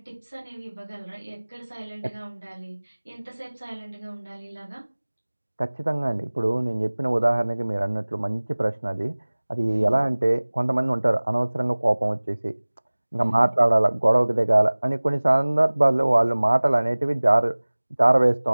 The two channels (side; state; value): both; inverted; correlation -1.00